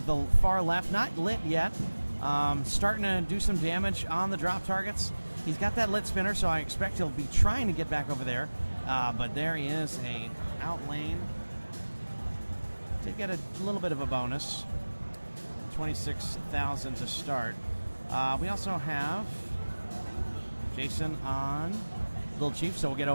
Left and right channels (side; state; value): both; inverted; correlation -1.00